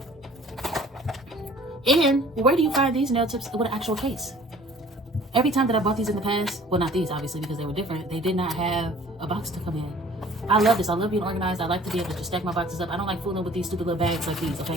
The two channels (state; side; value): normal; both; correlation 0.51